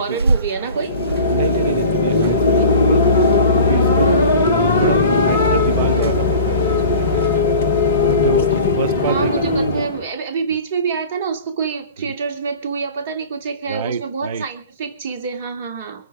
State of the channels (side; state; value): both; inverted; correlation -0.40